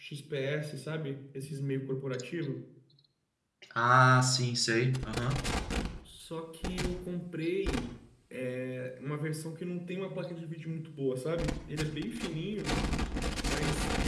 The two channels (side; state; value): both; identical; correlation 1.00